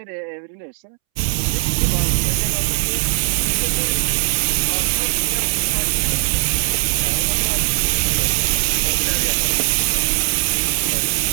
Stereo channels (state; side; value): silent; left; 66 dB below the other